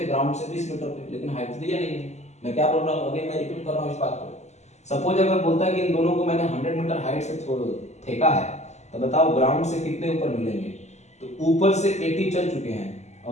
ग्राउंड से 20 मीटर पे, लेकिन हाइट दिया नहीं है। मैं क्या बोल रहा हूँ, अभी मैं रिपीट कर रहा हूँ इस बात को। सपोज अगर बोलता है कि इन दोनों को मैंने 100 मीटर हाइट से फेंका है, तो बताओ ग्राउंड से कितने ऊपर मिलेंगे। तो ऊपर से 80 चल चुके हैं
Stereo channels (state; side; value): late; right; 0.33 ms